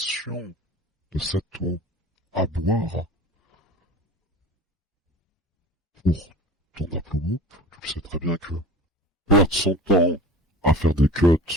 de cette eau à boire pour ton upload. Tu le sais très bien que perdre son temps à faire des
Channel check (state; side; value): normal; both; correlation 0.39